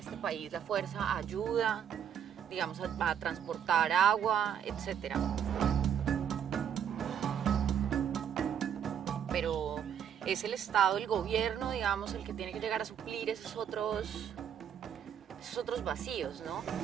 país, la Fuerza ayuda, digamos, a transportar agua, etc. Pero es el Estado, el gobierno, digamos, el que tiene que llegar a suplir esos otros vacíos, ¿no?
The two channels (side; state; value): left; quieter; 8.8 dB